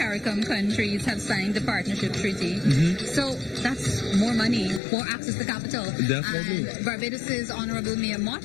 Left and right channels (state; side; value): drops out; right; at 4.8 s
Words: countries have signed the partnership treaty. So that's more money, more access to capital. Definitely. And Barbados's Honorable Mayor